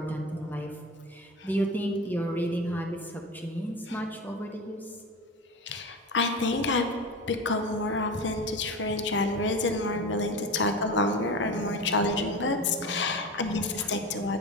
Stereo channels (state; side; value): normal; both; correlation 0.27